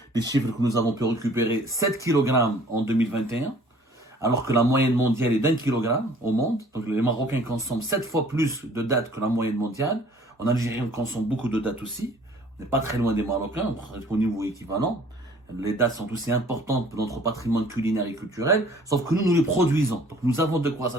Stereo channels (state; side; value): normal; both; correlation 0.53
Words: les chiffres que nous avons pu récupérer, 7 kg en 2021, alors que la moyenne mondiale est d'1 kg au monde. Donc les Marocains consomment 7 fois plus de dattes que la moyenne mondiale. En Algérie, on consomme beaucoup de dattes aussi. On n'est pas très loin des Marocains, au niveau équivalent. Les dattes sont aussi importantes pour notre patrimoine culinaire et culturel, sauf que nous les produisons. Donc nous avons de quoi